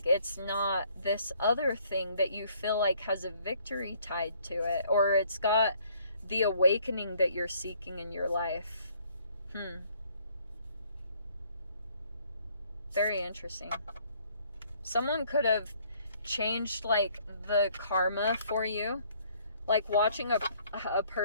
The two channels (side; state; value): both; inverted; correlation -0.63